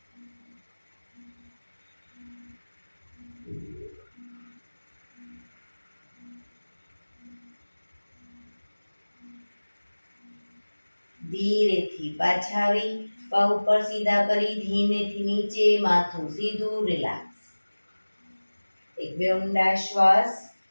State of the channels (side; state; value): both; inverted; correlation -1.00